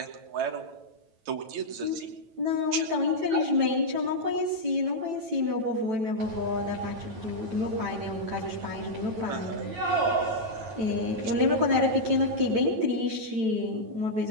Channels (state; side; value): late; left; 9.0 ms